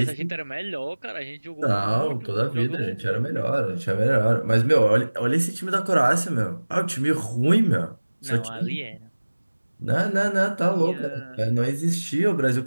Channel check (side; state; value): both; inverted; correlation -1.00